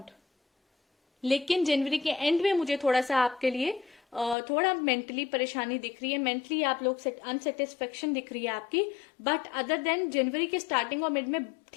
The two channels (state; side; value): drops out; right; at 4.4 s